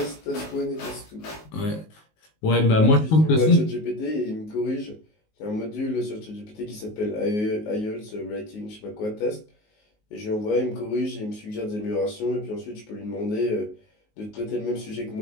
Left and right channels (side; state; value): right; late; 19 ms